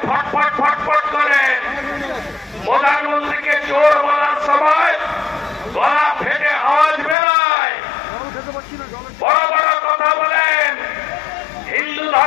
ফটফট ফটফট করেন। প্রধানমন্ত্রীকে চোর বলার সময় গলা ফেটে আওয়াজ বেরোয়, বড় বড় কথা বলেন। হিন্দু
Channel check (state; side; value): drops out; right; at 7.2 s